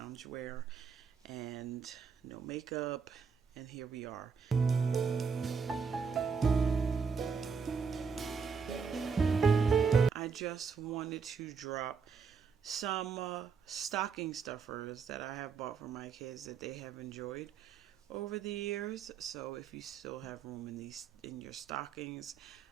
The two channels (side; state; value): left; quieter; 5.8 dB